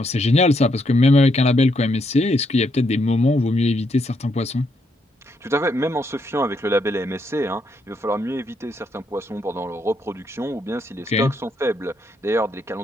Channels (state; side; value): normal; both; correlation 0.76